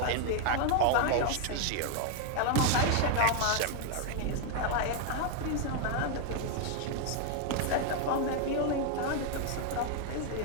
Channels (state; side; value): different; both; correlation 0.00